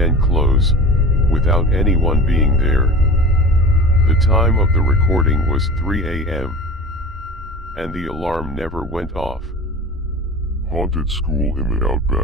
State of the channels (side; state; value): both; normal; correlation 0.36